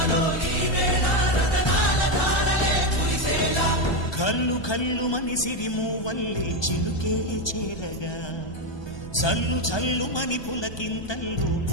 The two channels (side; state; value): right; late; 1.2 ms